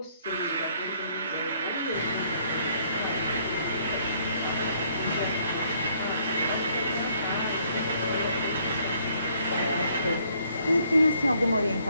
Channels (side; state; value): both; inverted; correlation -0.66